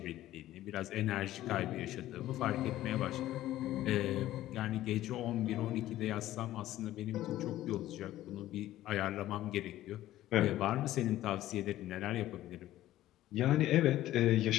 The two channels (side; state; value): right; quieter; 14.4 dB